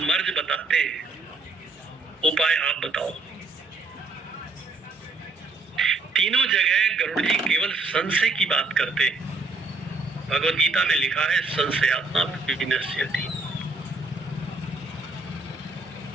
मर्ज बताते हैं, उपाय आप बताओ। तीनों जगह गरुड़ जी केवल संशय की बात करते हैं। भगवद गीता में लिखा है, संशयात्मा विनश्यति।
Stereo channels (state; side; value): quieter; left; 3.5 dB